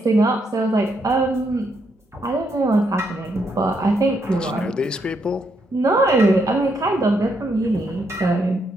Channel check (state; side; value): normal; both; correlation 0.77